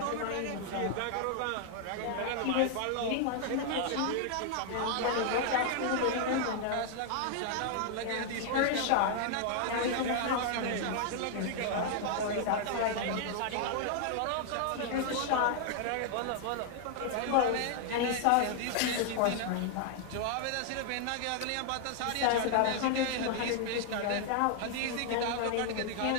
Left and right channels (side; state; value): both; different; correlation 0.00